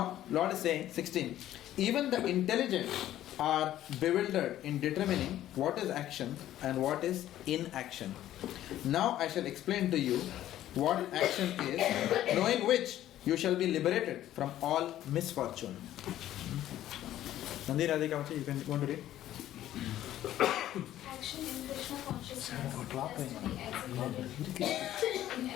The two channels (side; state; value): right; quieter; 12.9 dB